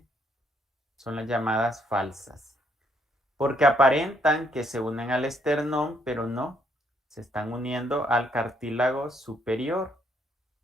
son las llamadas falsas, porque aparentan que se unen al esternón, pero no, se están uniendo al cartílago superior,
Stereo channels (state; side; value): normal; both; correlation 0.71